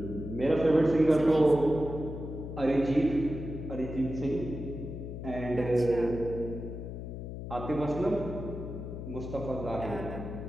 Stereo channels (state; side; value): noise; left; hum, 8 dB below the sound